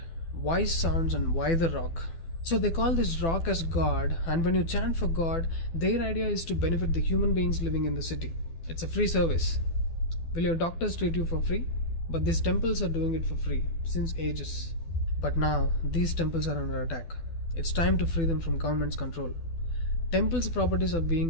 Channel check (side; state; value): right; late; 12 ms